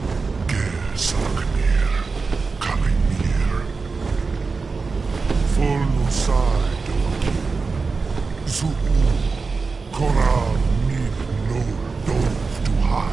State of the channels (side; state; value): left; quieter; 4.4 dB